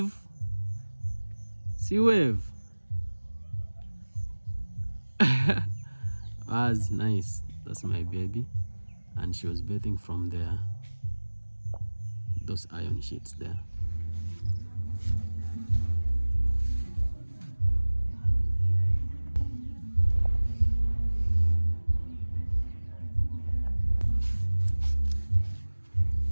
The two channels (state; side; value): inverted; both; correlation -1.00